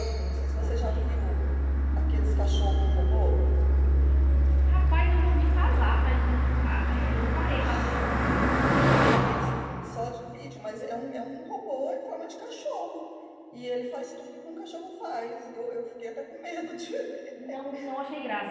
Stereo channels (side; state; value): both; identical; correlation 1.00